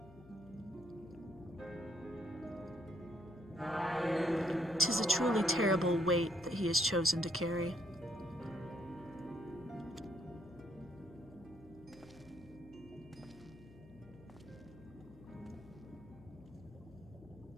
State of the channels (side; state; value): left; noise; hum, 20 dB below the sound